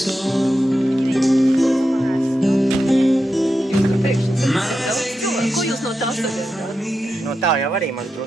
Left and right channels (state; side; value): normal; both; correlation 0.89